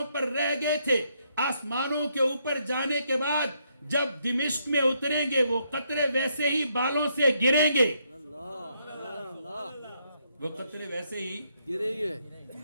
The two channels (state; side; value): inverted; both; correlation -0.75